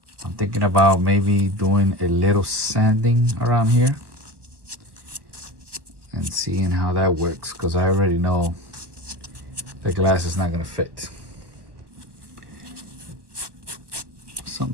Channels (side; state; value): left; late; 1.2 ms